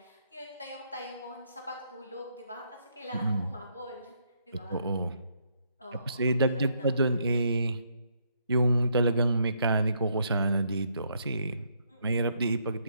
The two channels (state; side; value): inverted; both; correlation -0.74